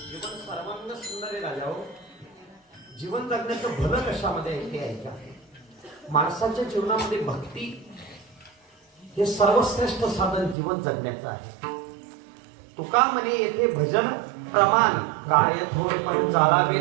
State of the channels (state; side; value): drops out; left; at 10.6 s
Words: जीवन सर्वांग सुंदर आहे राजा हो. जीवन जगण्याचं भलं कशामध्ये आहे ते ऐका. माणसाच्या जीवनामध्ये भक्ती हे सर्वश्रेष्ठ साधन जीवन जगण्याचं आहे. तुका म्हणे येथे भजन प्रमाण काय थोर पण चालावे